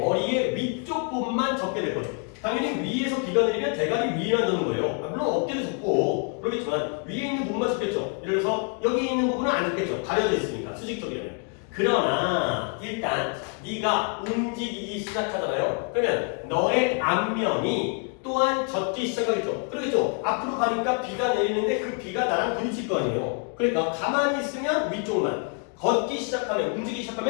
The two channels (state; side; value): quieter; right; 38.6 dB